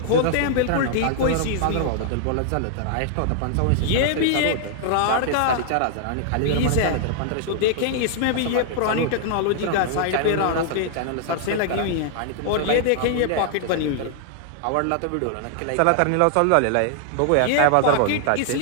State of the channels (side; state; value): both; different; correlation -0.01